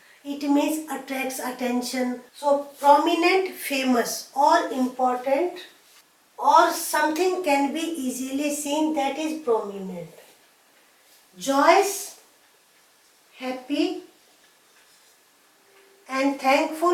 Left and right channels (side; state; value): both; identical; correlation 1.00